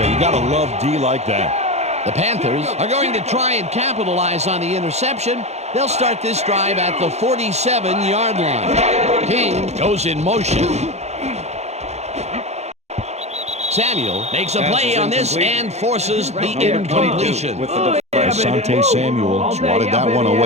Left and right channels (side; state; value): left; late; 0.32 ms